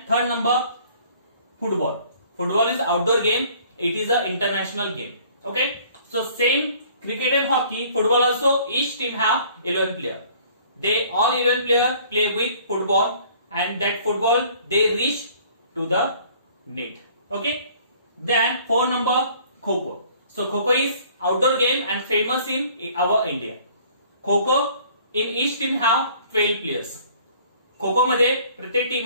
third number, football. Football is outdoor game. It is a international game. Okay. So same cricket and hockey, football also each team have 11 players. They all 11 players play with football and that football they reach to the net. Okay. Then four number, kho-kho. So kho-kho is outdoor game and famous in our India. Kho-kho in each team have 12 players. Kho-kho मध्ये प्रत्येक team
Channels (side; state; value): both; inverted; correlation -0.55